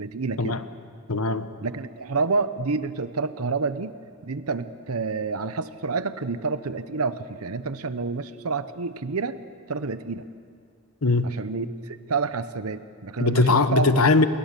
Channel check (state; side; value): normal; both; correlation 0.00